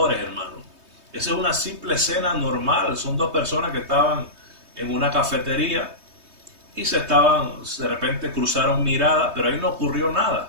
hermano. Esa es una simple escena normal. Son dos personas que estaban en una cafetería y de repente cruzaron miradas, pero ahí no ocurrió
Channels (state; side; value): late; left; 3.2 ms